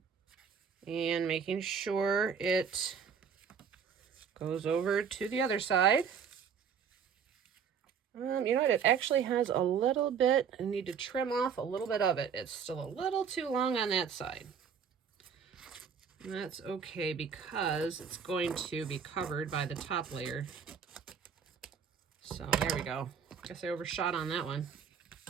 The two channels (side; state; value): left; quieter; 6.9 dB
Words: And making sure it goes over to the other side. You know what? It actually has a little bit. I need to trim off a little bit of it. It's still a little too long on that side. And that's okay because it's going to be covered by the top layer. So there we go. Guess I overshot on that one.